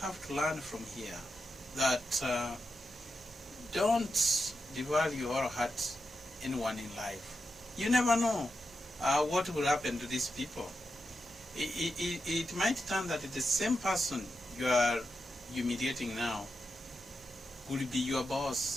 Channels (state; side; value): normal; both; correlation 0.87